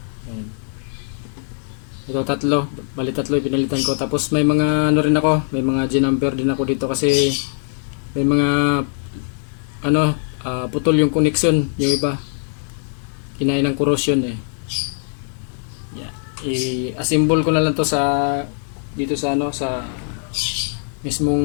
Ayan. Ito tatlo, bali tatlo yung pinalitan ko. Tapos may mga ano rin ako, may mga G-number din ako dito kasi may mga ano, putol yung connection, yung iba. Kinain ng corrosion eh. Yeah. I-assemble ko na lang to sa dito sa ano, sa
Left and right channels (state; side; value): silent; right; digital silence